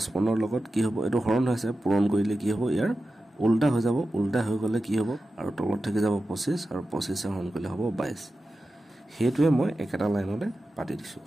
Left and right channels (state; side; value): normal; both; correlation 0.93